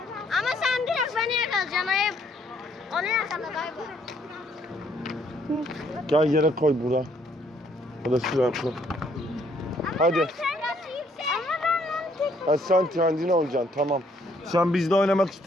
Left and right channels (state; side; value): normal; both; correlation 0.67